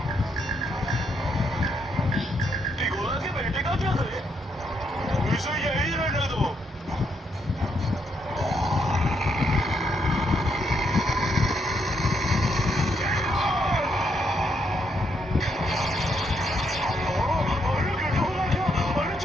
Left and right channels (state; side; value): normal; both; correlation 0.76